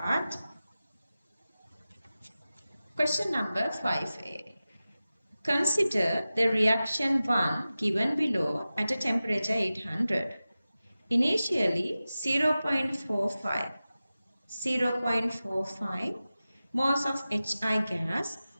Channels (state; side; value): inverted; both; correlation -0.95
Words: Question number 5a. Consider the reaction 1 given below at a temperature 800. Initially 0.45 moles of HI gas